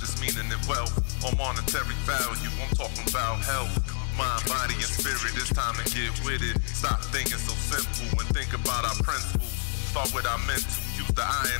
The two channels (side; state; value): right; silent; 59 dB below the other